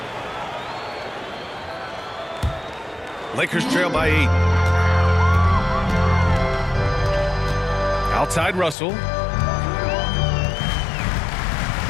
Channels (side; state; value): right; drops out; at 8.8 s